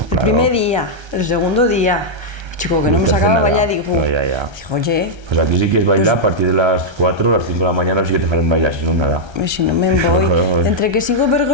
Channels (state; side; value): late; left; 1.3 ms